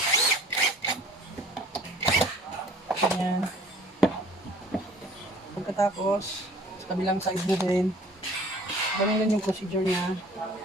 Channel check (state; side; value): normal; both; correlation 0.51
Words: Ganyan. Pagkatapos, sa kabilang side mo din, ganun din yung procedure niya.